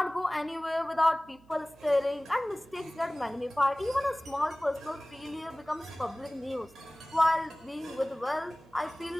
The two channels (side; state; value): right; noise; hum, 26 dB below the sound